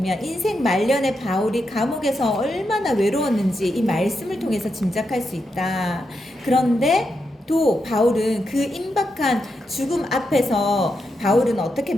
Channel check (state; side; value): normal; both; correlation 0.85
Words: 인생 말년에 바울이 감옥에서 얼마나 외로웠는지 이 말씀을 통해서 짐작할 수 있다. 그런데 또 바울은 그 임박한 죽음 앞에서 바울은 어떻게